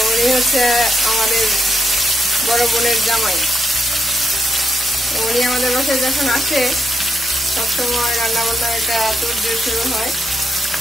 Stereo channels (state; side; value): normal; both; correlation 0.79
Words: উনি হচ্ছে আমাদের বড় বোনের জামাই। উনি আমাদের বাসায় যখন আসে সবসময় রান্না বান্না একটা তোড়জোড় শুরু হয়।